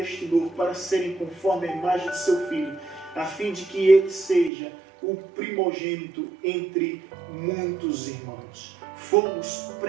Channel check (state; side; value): drops out; left; at 4.5 s